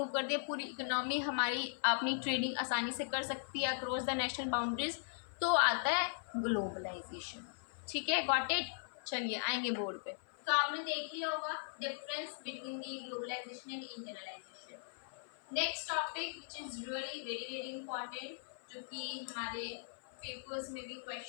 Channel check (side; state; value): right; silent; 52 dB below the other